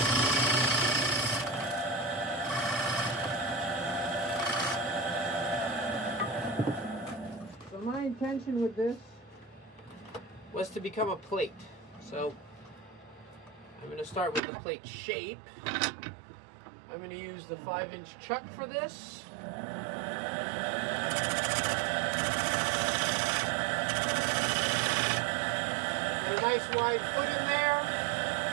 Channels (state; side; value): drops out; left; at 14.4 s